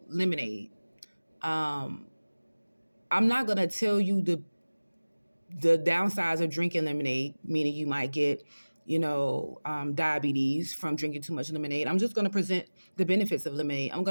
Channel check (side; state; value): both; inverted; correlation -1.00